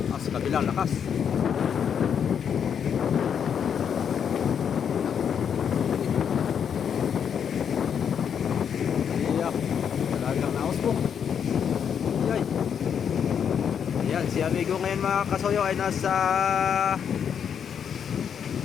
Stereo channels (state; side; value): quieter; right; 7.8 dB